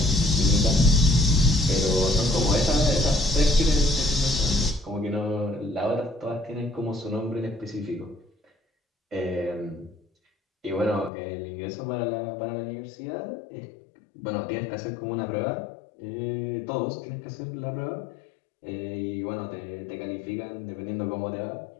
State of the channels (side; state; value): right; drops out; at 11.1 s